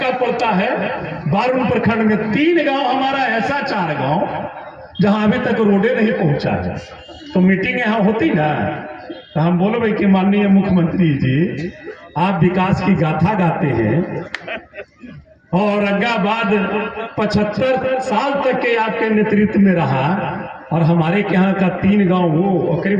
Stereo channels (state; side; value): identical; both; correlation 1.00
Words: पड़ता है बारून प्रखंड में। 3 गांव हमारा ऐसा, 4 गांव जहां अभी तक रोडे नहीं पहुंचा है। तो मीटिंग यहाँ होती ना, तो हम बोलो भाई कि माननीय मुख्यमंत्री जी, आप विकास की गाथा गाते हैं और औरंगाबाद 75 साल तक के आपके नेतृत्व में रहा, और हमारे यहाँ का 3 गांव वो और